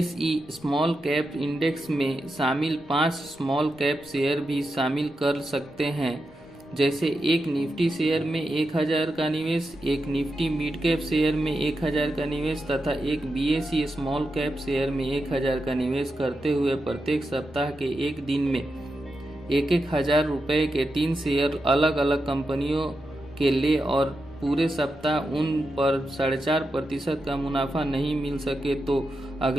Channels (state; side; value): noise; left; rumble, 25 dB below the sound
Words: स्मॉल कैप इंडेक्स में शामिल 5 स्मॉल कैप शेयर भी शामिल कर सकते हैं। जैसे एक निफ्टी शेयर में 1,000 का निवेश, एक निफ्टी मिड कैप शेयर में 1,000 का निवेश तथा एक BSE स्मॉल कैप शेयर में 1,000 का निवेश करते हुए प्रत्येक सप्ताह के एक दिन में 1,000 रुपये के 3 शेयर अलग अलग कंपनियों के ले और पूरे सप्ताह उन पर 4.5% का मुनाफा नहीं मिल सके तो